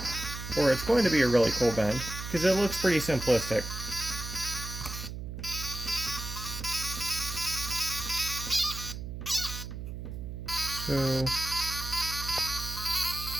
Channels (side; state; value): right; noise; hum, 8 dB below the sound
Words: Or it's going to be a really cool bin. Because it looks pretty simplistic.